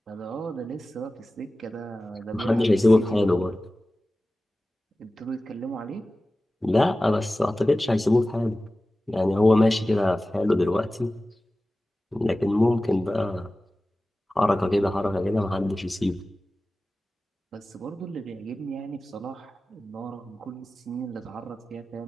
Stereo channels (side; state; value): both; normal; correlation 0.96